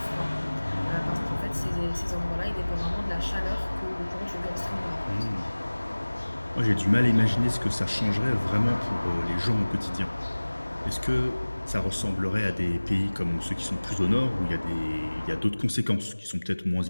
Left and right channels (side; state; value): both; inverted; correlation -1.00